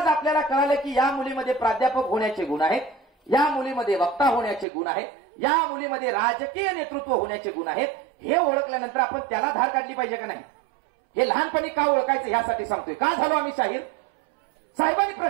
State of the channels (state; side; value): drops out; left; at 4.7 s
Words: आपल्याला कळालं की या मुलीमध्ये प्राध्यापक होण्याचे गुण आहेत, या मुलीमध्ये वक्ता होण्याचे गुण आहेत, या मुलीमध्ये राजकीय नेतृत्व होण्याचे गुण आहेत. हे ओळखल्यानंतर आपण त्याला धार काढली पाहिजे का नाही, हे लहानपणी का ओळखायचं यासाठी सांगतोय. का झालो आम्ही शाहीर? साहेबांनी